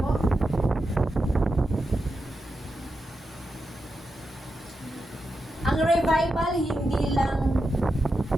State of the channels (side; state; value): both; normal; correlation 0.88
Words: Ang revival hindi lang